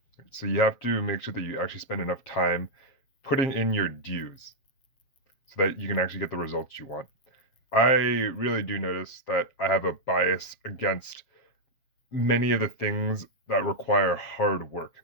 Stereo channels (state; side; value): late; right; 7.4 ms